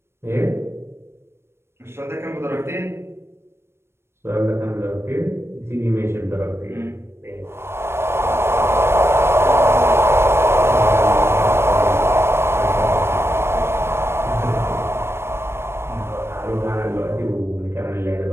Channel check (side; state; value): left; late; 0.12 ms